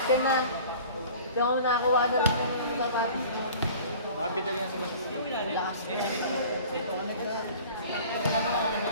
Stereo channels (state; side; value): inverted; both; correlation -0.45